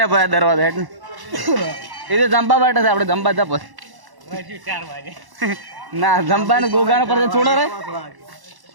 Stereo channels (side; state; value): left; late; 1.1 ms